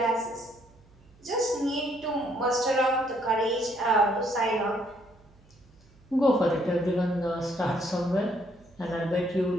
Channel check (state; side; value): noise; right; hum, 28 dB below the sound